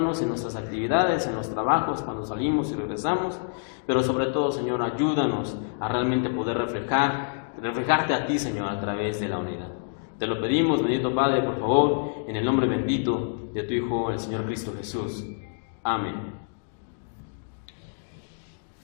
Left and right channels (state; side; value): silent; right; digital silence